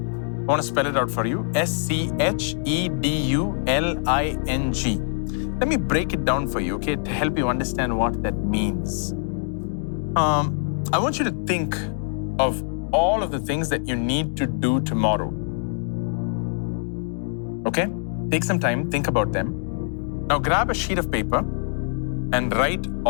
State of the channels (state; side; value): silent; right; digital silence